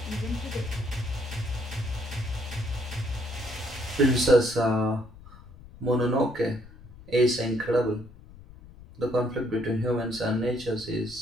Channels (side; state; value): left; noise; rumble, 19 dB below the sound